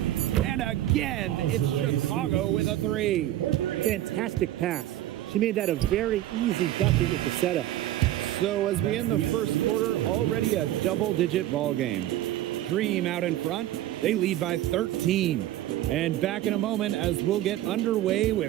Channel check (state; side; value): quieter; left; 13.9 dB